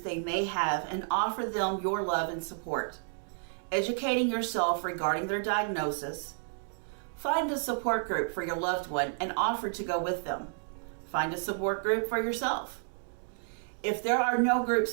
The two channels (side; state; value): left; silent; digital silence